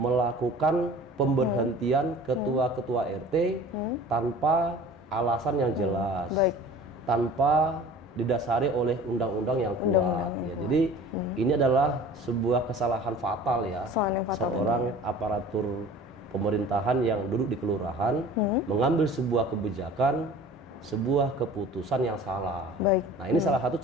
pemberhentian ketua-ketua RT tanpa alasan yang jelas, Baik. tanpa didasari oleh undang-undang yang kuat. Ya, jadi ini adalah sebuah kesalahan fatal ya. Seorang aparatur pemerintahan yang duduk di kelurahan mengambil sebuah kebijakan sebuah keputusan yang salah. Baik. Nah, ini salah satu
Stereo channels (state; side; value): normal; both; correlation 0.44